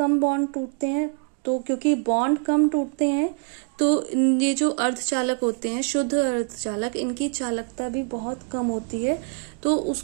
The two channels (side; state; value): left; quieter; 39.6 dB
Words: बॉन्ड टूटते हैं। तो क्योंकि बॉन्ड कम टूटते हैं तो ये जो अर्धचालक होते हैं, शुद्ध अर्धचालक, इनकी चालकता भी बहुत कम होती है, तो